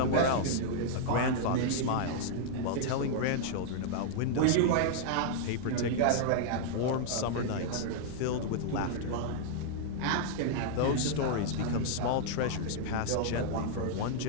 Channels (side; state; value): both; different; correlation -0.01